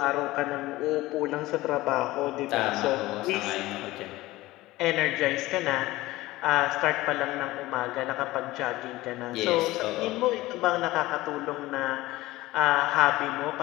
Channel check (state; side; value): quieter; right; 18.3 dB